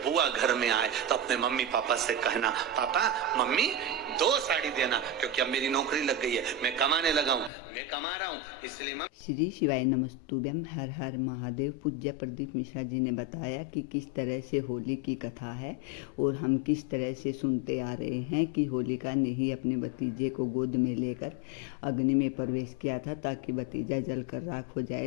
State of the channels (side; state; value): right; drops out; at 7.5 s